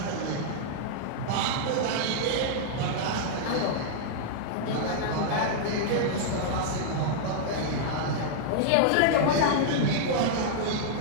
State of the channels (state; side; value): different; both; correlation -0.01